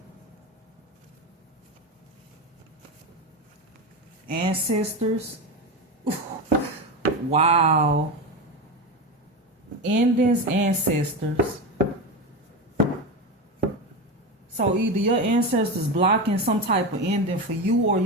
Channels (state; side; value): normal; both; correlation 0.18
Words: Ancestors. Wow. Endings, ancestors. So either your ancestors blocking some type of ending for you, or